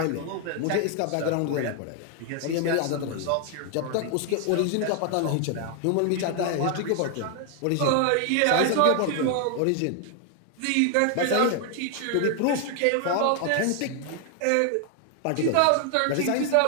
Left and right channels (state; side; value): different; both; correlation 0.00